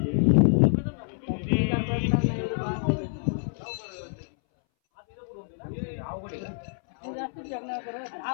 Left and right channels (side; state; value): right; silent; 60 dB below the other